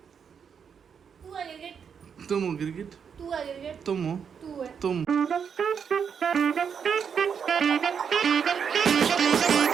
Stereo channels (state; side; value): quieter; left; 7.0 dB